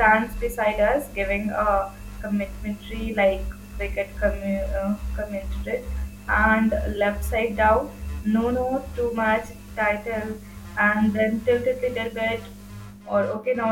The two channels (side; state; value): both; identical; correlation 1.00